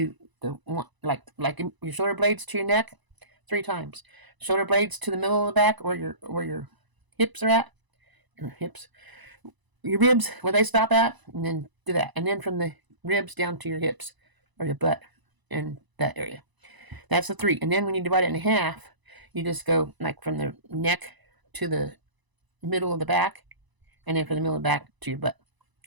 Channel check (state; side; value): late; left; 1.0 ms